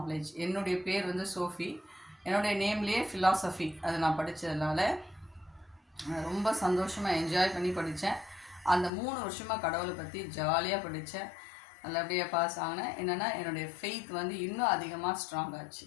என்னுடைய பேர் வந்து சோஃபி. என்னுடைய நேம்லேயே ஃபிலாசபி அது நான் படித்ததுனால ரொம்ப சந்தோஷமாக என்ஜாய் பண்ணி படித்தேன். அந்த 3 வருஷமாக கடவுளை பற்றி ஜாலியாக படித்தேன். நல்லபடியாக பாஸ் ஆகினேன். என்னென்னா என்னுடைய ஃபெய்த் வந்து இன்னும் அதிகமாக ஸ்ட்ராங் ஆச்சு.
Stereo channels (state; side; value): drops out; right; at 8.9 s